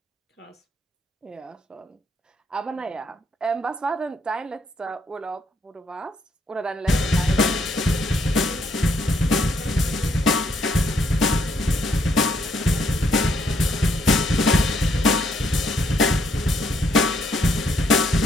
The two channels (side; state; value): both; normal; correlation 0.72